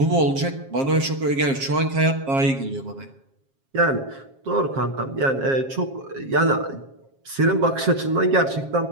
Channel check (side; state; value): left; late; 7.4 ms